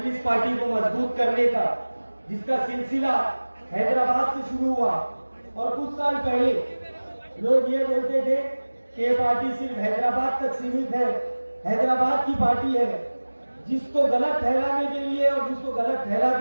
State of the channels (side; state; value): both; inverted; correlation -1.00